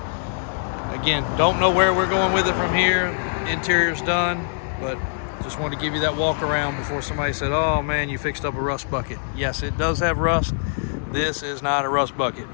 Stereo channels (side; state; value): right; silent; 56 dB below the other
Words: Again, don't know where we're going with it from here. Interior's done, but just wanted to give you that walk around before somebody said, oh man, you fixed up a rust bucket. Yes, it does have rust. This is not a rust bucket.